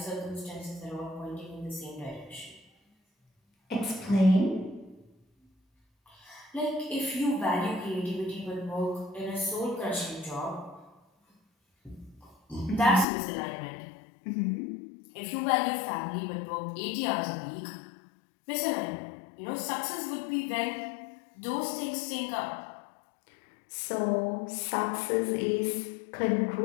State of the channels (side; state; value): right; drops out; at 13.1 s